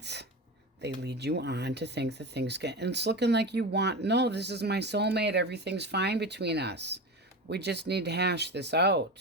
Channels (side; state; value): both; normal; correlation 0.25